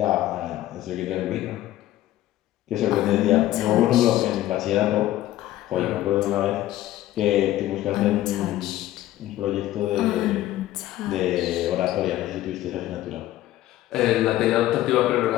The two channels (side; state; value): right; quieter; 14.5 dB